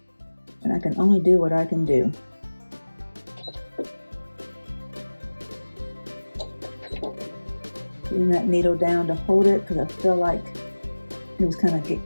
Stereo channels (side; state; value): both; inverted; correlation -1.00